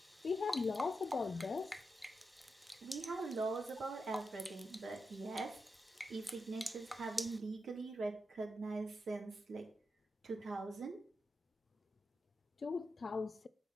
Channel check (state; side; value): normal; both; correlation 0.87